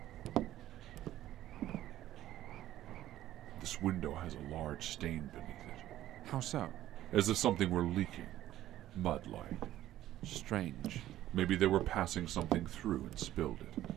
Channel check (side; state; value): left; quieter; 13.5 dB